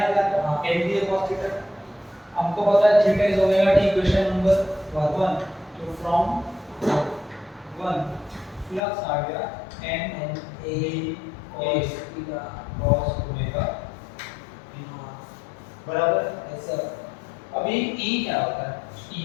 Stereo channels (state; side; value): drops out; right; at 8.8 s